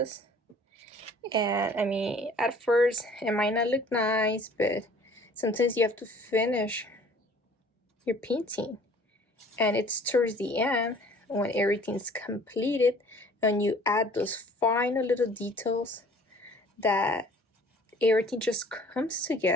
And I mean, at first it might not look nice, but sometimes you have to finish your painting, and it's towards the end when everything's completed and you add those final little details that everything just comes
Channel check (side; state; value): both; normal; correlation 0.52